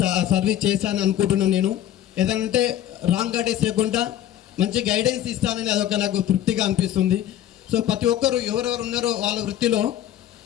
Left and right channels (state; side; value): quieter; right; 11.6 dB